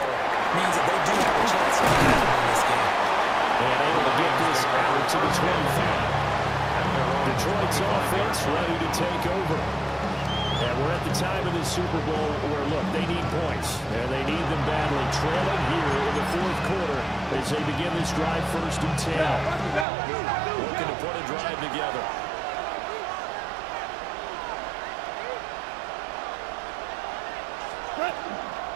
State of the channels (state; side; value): drops out; left; at 19.9 s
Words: means that they do have a chance to win this game. And able to get this out to the 25. Detroit's offense ready to take over. And we're at the time of this Super Bowl where, look, they need points. And they need them badly. Trailing here in the 4th quarter as they begin this drive 1st and 10. Looking to put a drive together.